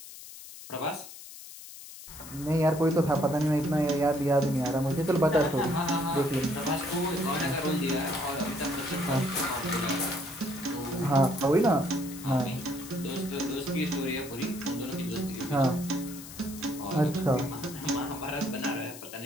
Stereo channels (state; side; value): noise; left; hiss, 14 dB below the sound